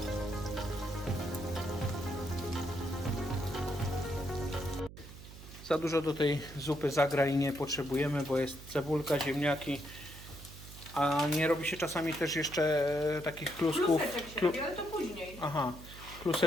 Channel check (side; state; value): right; noise; hum, 15 dB below the sound